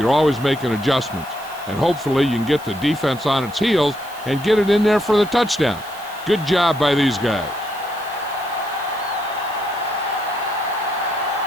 always making adjustments, and hopefully you can get the defense on its heels and get it in there for the touchdown. Good job by these guys.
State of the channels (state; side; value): noise; right; hiss, 20 dB below the sound